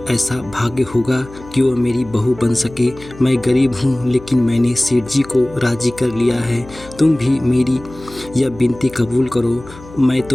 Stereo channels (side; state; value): left; noise; hum, 19 dB below the sound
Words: ऐसा भाग्य होगा कि वह मेरी बहू बन सके। मैं गरीब हूँ, लेकिन मैंने सेठ जी को राजी कर लिया है। तुम भी मेरी यह विनती कबूल करो। मैं